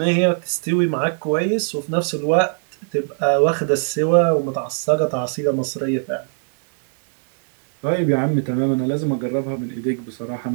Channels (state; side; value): silent; left; digital silence